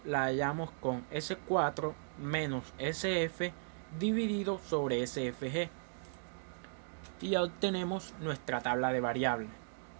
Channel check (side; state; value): left; silent; digital silence